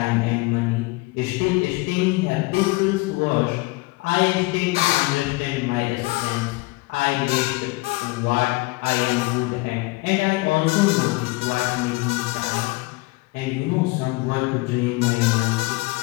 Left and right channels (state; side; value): quieter; right; 23.4 dB